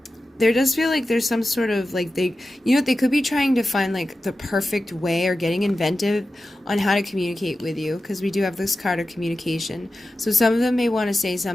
there does feel like there's some sort of, they could be trying to find, the perfect way or getting inventive on how to communicate with you, because we do have this card of communication. So some of them may want to say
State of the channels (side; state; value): both; normal; correlation 0.93